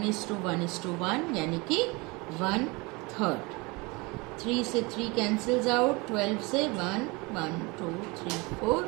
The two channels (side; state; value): left; quieter; 26.1 dB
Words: यानी कि 1/3। 3 से 3 cancels out, 12 से 1, 1, 2, 3, 4.